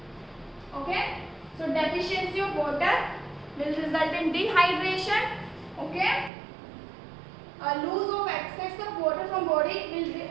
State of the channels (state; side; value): drops out; left; at 6.3 s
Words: Okay, so deficiency of water will result in dehydration. Okay, a loss of excess of water from body